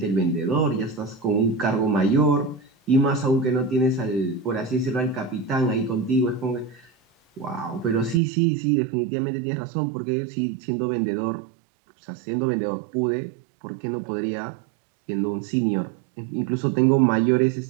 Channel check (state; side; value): drops out; left; at 8.2 s